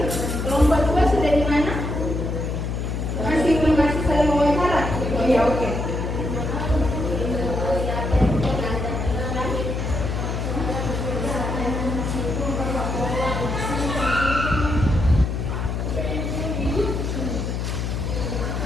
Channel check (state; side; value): noise; left; hum, 2 dB below the sound